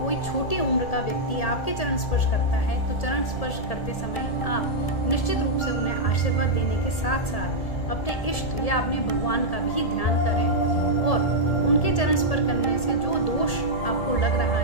कोई छोटी उम्र का व्यक्ति आपके चरण स्पर्श करता है तो चरण स्पर्श करते समय आप निश्चित रूप से उन्हें आशीर्वाद देने के साथ साथ अपने इष्ट या अपने भगवान का भी ध्यान करें और उनके चरण स्पर्श करने से जो दोष आपको लग रहा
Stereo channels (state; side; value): late; right; 1.7 ms